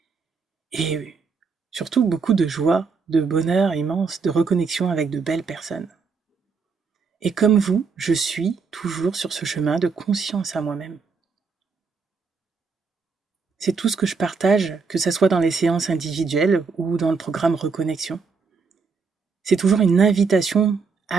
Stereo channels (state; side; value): quieter; left; 5.0 dB